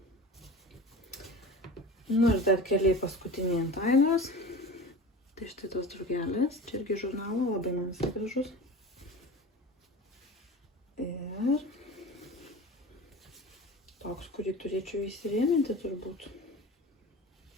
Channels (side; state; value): both; normal; correlation 0.34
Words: Nu ir dar keliai paskutiniai ant Ainos. Tai štai tos drugelės. Čia irgi žurnalo, labai man visai gražus. Ir toks, kurį turėčiau įsirėminti turbūt.